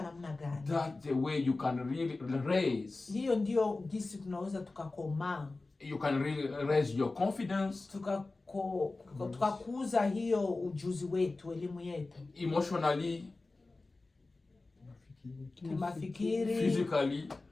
namna gani. That's the way you can really raise. Hiyo ndio jinsi tunaweza tukakomaa. You can really raise your confidence. Tukakuza hiyo ujuzi wetu, elimu yetu. Emotionally. Kimafikiri. Physically.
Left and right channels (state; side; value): quieter; right; 3.4 dB